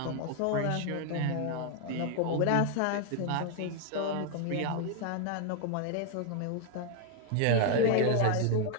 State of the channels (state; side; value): different; both; correlation 0.01